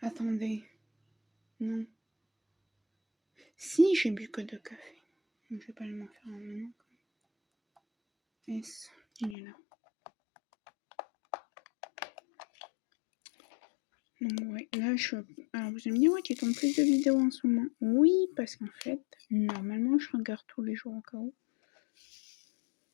Attendez. Non. Si, j'ai bu que 2 cafés. Donc, je vais pas aller m'en faire un maintenant. S, il est là. Donc, ouais, là, alors, vous allez me dire, ouais, tu tombes plus de vidéos en ce moment. Oui, parce qu'en fait, normalement, je regarde tous les jours au cas où.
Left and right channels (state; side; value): drops out; right; at 9.3 s